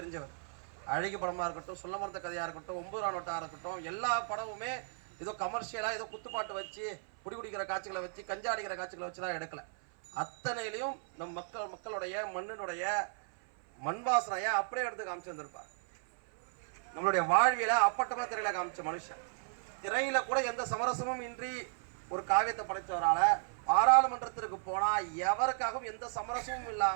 அழகி படமாக இருக்கட்டும், சொல்ல மறந்த கதையாக இருக்கட்டும், 9 நோட்டாக இருக்கட்டும், எல்லா படமுமே ஏதோ கமர்ஷியலாக ஏதோ குத்துப்பாட்டு வச்சு குடிக்கிற காட்சிகளை வச்சு கஞ்சா அடிக்கிற காட்சிகளை வச்சு தான் எடுக்கல. அத்தனையிலையும் நம் மக்களுடைய மண்ணினுடைய மண் வாசனையை அப்படியே எடுத்து காமிச்சு வந்திருப்பார். நம்மளுடைய வாழ்வியல அப்பட்டமா திரையில காமிச்ச மனுஷன். திரையில கூட எந்த சமரசமும் இன்றி ஒரு காவியத்தை படைத்தவரால பாராளுமன்றத்திற்கு போனா எவருக்காகவும் எந்த சமரசமும்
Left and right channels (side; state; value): left; silent; 54 dB below the other